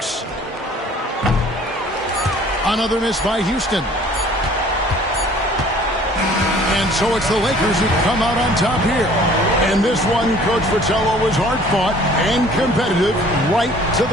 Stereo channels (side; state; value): both; normal; correlation 0.52